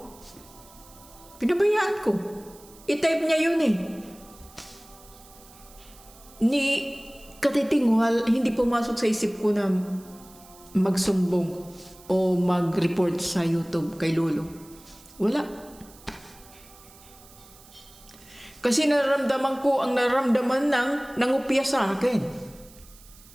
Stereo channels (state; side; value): noise; right; hiss, 23 dB below the sound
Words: Pinabayaan ko. I-type niya yun eh. Ni katitingwal, hindi pumasok sa isip ko na magsumbong o mag-report sa YouTube kay Lolo. Wala. Kasi nararamdaman ko ang nararamdaman ng nangupya sa akin.